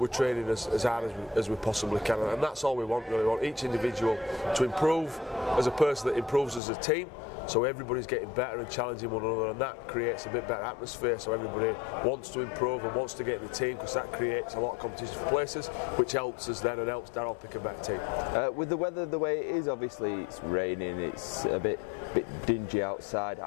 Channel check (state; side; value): drops out; right; at 6.6 s